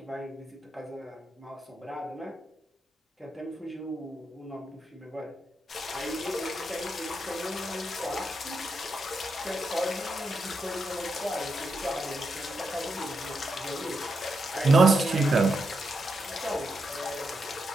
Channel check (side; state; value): both; normal; correlation 0.84